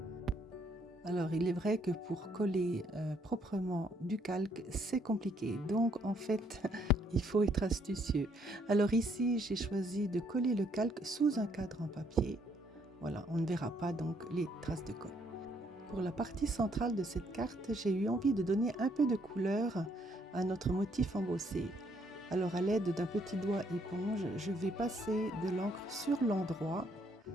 Alors, il est vrai que pour coller proprement du calque, c'est compliqué. Donc, en fait, il faut être astucieux. Alors ici, j'ai choisi de coller le calque sous un cadre en papier. Voilà, on ne verra pas donc les traces de colle. Pour la partie centrale de cette carte, j'ai eu envie de donner un peu de couleur à notre motif embossé. Alors, à l'aide d'un petit doigt éponge, je vais passer de l'encre sur l'endroit,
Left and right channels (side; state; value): both; normal; correlation 0.69